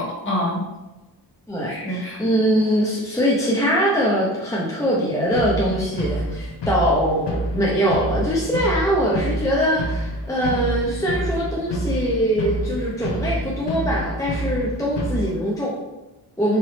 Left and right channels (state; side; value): normal; both; correlation 0.40